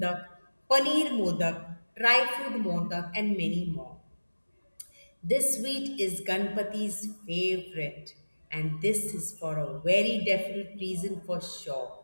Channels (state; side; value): inverted; both; correlation -1.00